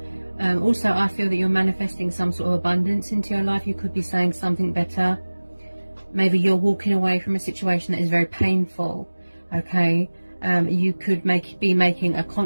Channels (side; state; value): both; inverted; correlation -1.00